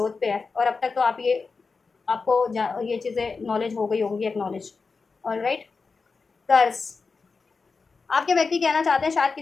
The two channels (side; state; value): right; quieter; 4.6 dB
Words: पे है, और अब तक तो आप ये, आपको ये चीज़ें नॉलेज हो गई होंगी, एक्नॉलेज, और राइट। कर्स, आपके व्यक्ति कहना चाहते हैं शायद